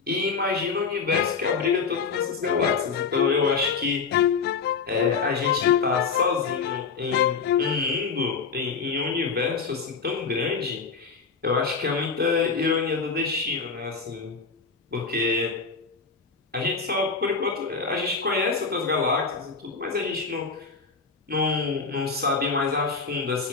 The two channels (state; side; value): quieter; right; 5.1 dB